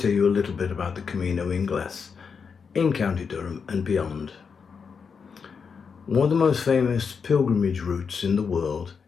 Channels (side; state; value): right; quieter; 5.9 dB